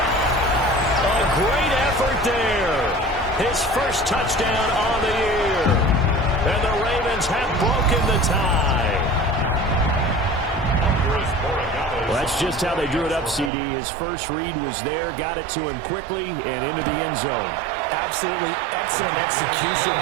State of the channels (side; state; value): left; drops out; at 13.5 s